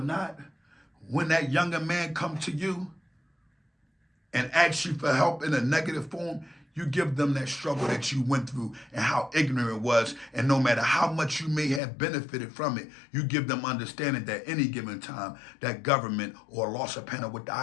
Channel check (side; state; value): right; drops out; at 11.8 s